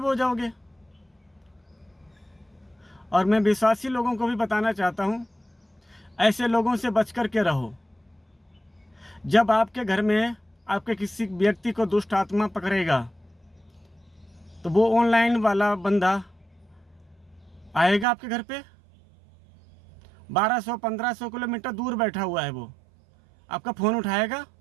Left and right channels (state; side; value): drops out; left; at 18.1 s